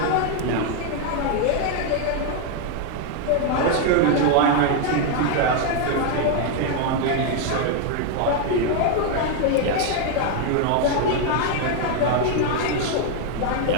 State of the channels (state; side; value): different; both; correlation 0.01